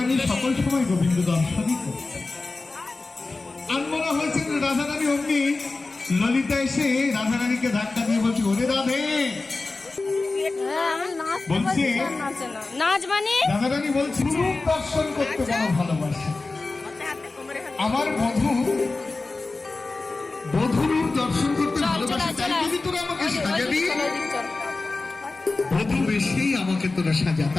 সকল সময় গোবিন্দ দর্শনই করছে। আর মনে হয়েছে রাধারানী অমনি ললিতা এসে রাধারানীকে ধাক্কা দিয়ে বলছে, ওরে রাধে বলছে, নাচ মানে রাধারানী বলছে রূপ দর্শন করতে বড় ভালোবাসে। আমার বধূরূপ দর্শন করতে ভালোবাসে, তাই যদি তোরা আমাকে সাজাবি, বধূ বেশি আমাকে তোরা সাজা।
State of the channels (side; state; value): right; quieter; 3.5 dB